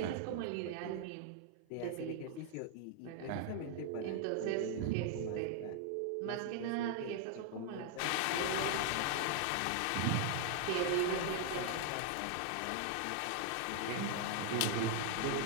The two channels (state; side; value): different; both; correlation 0.00